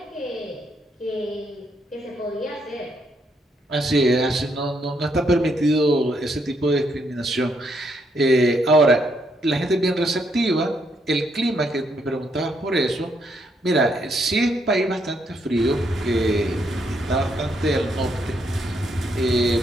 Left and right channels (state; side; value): normal; both; correlation 0.75